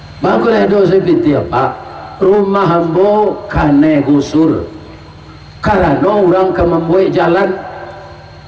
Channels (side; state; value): both; identical; correlation 1.00